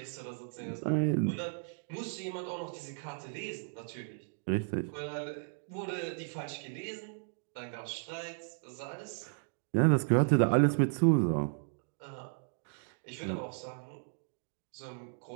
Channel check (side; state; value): left; silent; digital silence